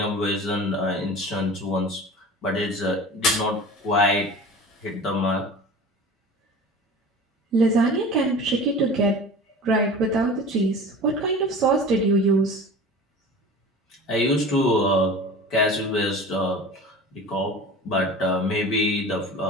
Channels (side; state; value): both; normal; correlation 0.37